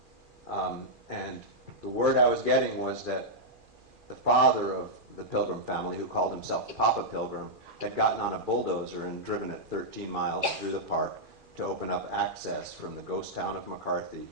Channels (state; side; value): late; left; 2.4 ms